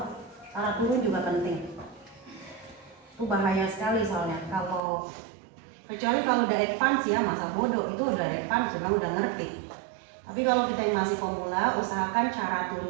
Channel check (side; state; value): left; drops out; at 4.8 s